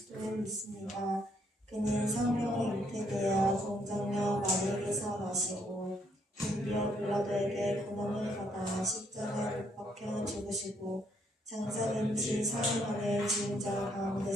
믿습니다. 그는 성령에 잉태되어 공정녀 마리에게서 나시고 본디오 빌라도에게 고난을 받아 십자가에 못 박혀 죽으시고 장사된 지 4일 만에 죽은 자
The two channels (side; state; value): both; normal; correlation 0.71